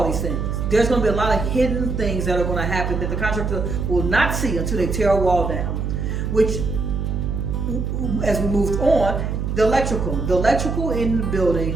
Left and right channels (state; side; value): noise; right; hum, 2 dB below the sound